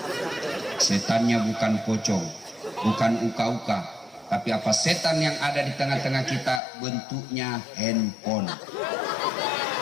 Setannya bukan pocong, bukan uka-uka, tapi apa setan yang ada di tengah-tengah kita bentuknya handphone.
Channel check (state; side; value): drops out; right; at 6.6 s